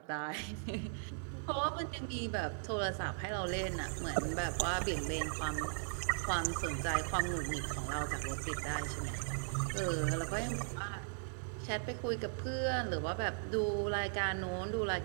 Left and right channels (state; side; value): silent; left; digital silence